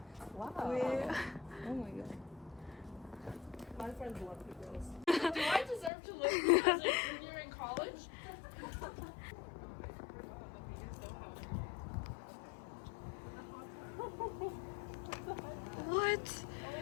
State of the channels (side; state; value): right; drops out; at 5.9 s